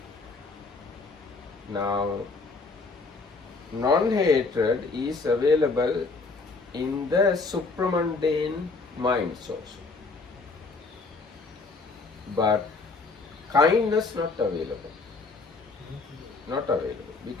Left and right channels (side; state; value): right; quieter; 3.9 dB